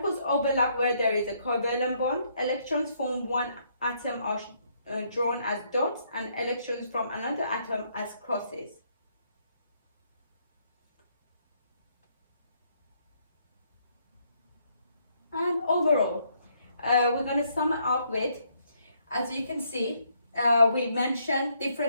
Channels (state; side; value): inverted; both; correlation -0.71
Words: overlap where there is a covalent bond. Electrons from one atom are drawn as dots, and electrons from another atom as crosses. And overall, we're going to sum it up with, as you can see, we mentioned